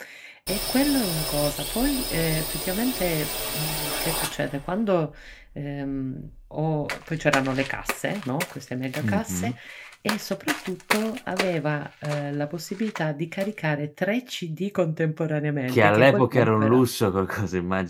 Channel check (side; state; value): both; identical; correlation 1.00